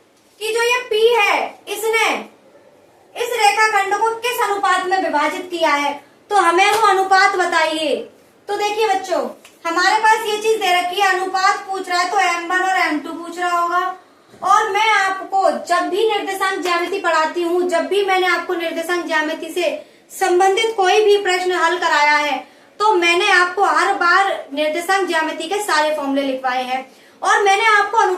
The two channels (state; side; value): identical; both; correlation 1.00